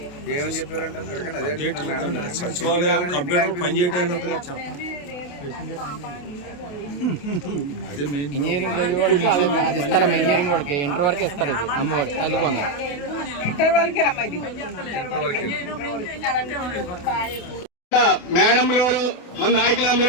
ఏమని చెప్పారంటే సచివాలయం కంప్యూటర్ పనిచేయడానికి ఇంజనీరింగ్ అది ఇస్తారమ్మా. ఇంజనీరింగ్ వాడికి ఇంటర్ వరకే ఇస్తారు. ఇది అమ్మవాడి తల్లికి వంద. మేడం గారు మన నాయకులు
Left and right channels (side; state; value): right; late; 28 ms